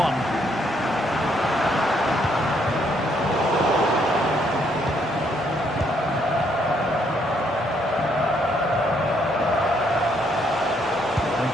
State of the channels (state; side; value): normal; both; correlation 0.71